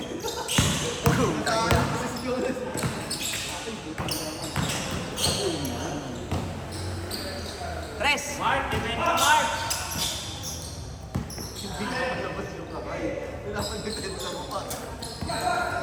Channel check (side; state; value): both; identical; correlation 1.00